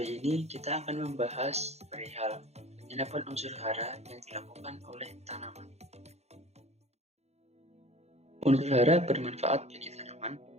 ini kita akan membahas perihal penyerapan unsur hara yang dilakukan oleh tanaman. Unsur hara bermanfaat bagi tanaman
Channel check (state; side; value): late; left; 0.31 ms